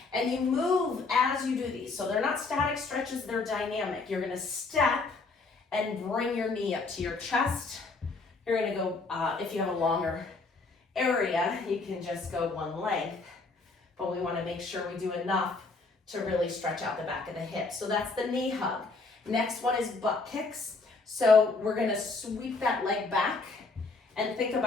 and you move as you do these. So they're not static stretches, they're dynamic. You're gonna step and bring your knee up to your chest. You're gonna go, if you have a longer area, you can just go one length, but we wanna make sure we do enough to really stretch out the back of the hip. So that's the knee hug. Next one is butt kicks. So we're gonna sweep that leg back and think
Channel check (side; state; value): right; quieter; 3.9 dB